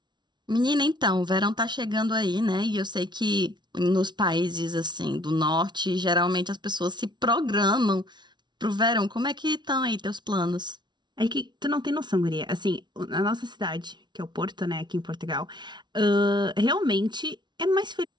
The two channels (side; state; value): left; late; 0.21 ms